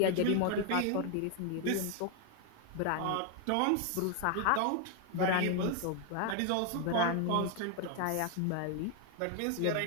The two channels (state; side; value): different; both; correlation 0.01